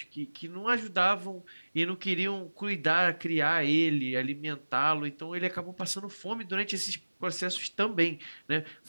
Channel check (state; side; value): inverted; both; correlation -1.00